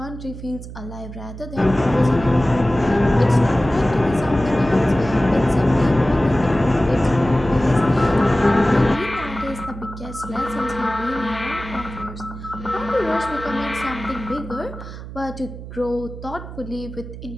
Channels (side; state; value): right; noise; hum, 12 dB below the sound